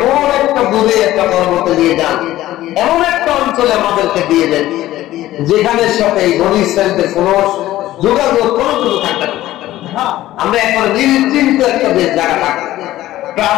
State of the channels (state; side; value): quieter; right; 15.1 dB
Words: একটা দূরে একটা পর্বতে নিয়ে যান এমন একটা অঞ্চলে আমাদেরকে দিয়ে দেন যেখানে সাথে এই বনি ইসরাইলদের কোনো যোগাযোগ কোনো কিছু থাকবে না আমরা এখন নিশ্চিন্ত একটা জায়গা থাকবো